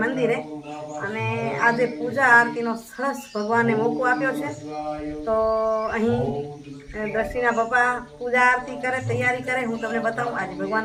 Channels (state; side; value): identical; both; correlation 1.00